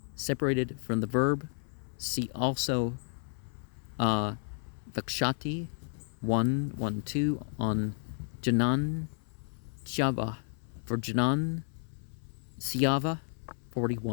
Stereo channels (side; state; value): right; silent; 56 dB below the other